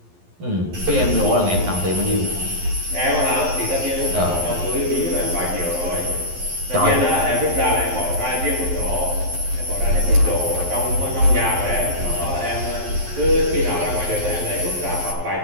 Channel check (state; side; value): late; left; 11 ms